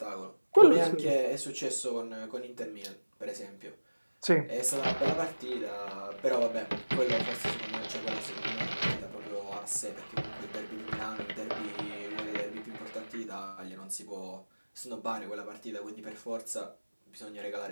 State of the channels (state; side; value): inverted; both; correlation -1.00